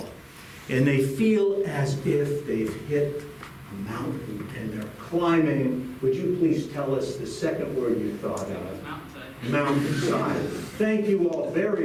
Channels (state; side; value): identical; both; correlation 1.00